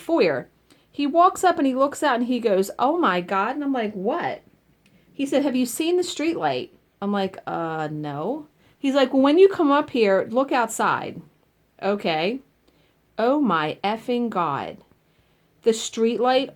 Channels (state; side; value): identical; both; correlation 1.00